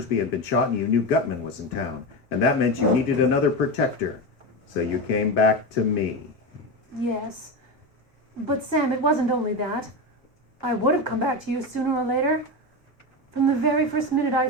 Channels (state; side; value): normal; both; correlation 0.18